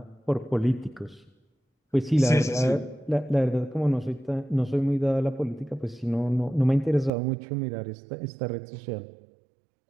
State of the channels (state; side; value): drops out; left; at 7.1 s